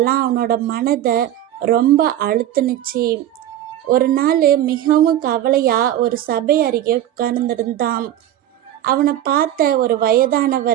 அவனோட மனதை ரொம்ப அழுத்துனுச்சு. ஒரு நாள் மிகவும் கவலையா ஒரு சபை அருகே உட்கார்ந்திருந்தான். அவனை பார்த்த ஒரு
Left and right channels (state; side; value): quieter; left; 12.3 dB